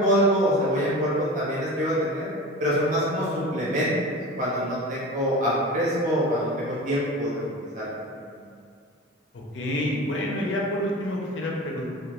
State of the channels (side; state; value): both; normal; correlation 0.33